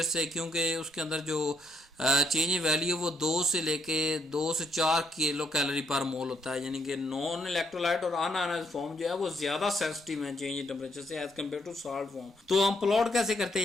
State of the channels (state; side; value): normal; both; correlation 0.73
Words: से, क्योंकि उसके अंदर जो चेंज इन वैल्यू वो 2 से लेके 2 से 4 किलो कैलोरी पर मोल होता है। यानी कि नॉन इलेक्ट्रोलाइट और अनआयनाइज्ड फॉर्म जो है वो ज्यादा सेंसिटिव है चेंज इन टेम्परेचर से as compare to salt form. तो हम प्लॉट कैसे करते